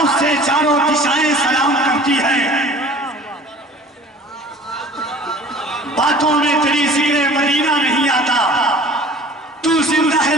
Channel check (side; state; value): both; normal; correlation 0.46